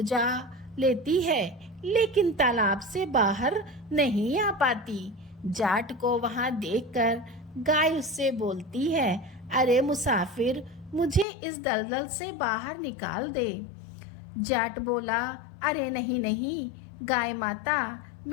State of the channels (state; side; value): drops out; right; at 11.2 s